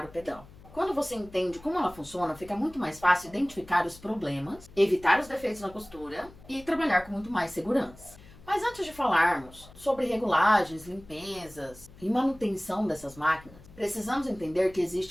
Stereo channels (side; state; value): left; noise; hum, 21 dB below the sound